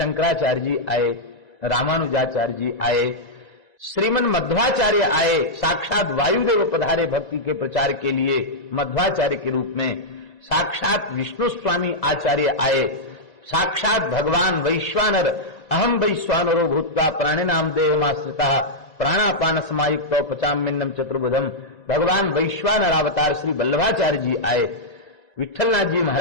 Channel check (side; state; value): right; late; 2.0 ms